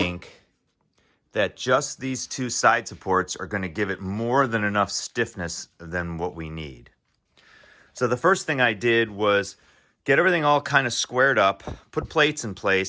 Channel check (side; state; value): both; identical; correlation 1.00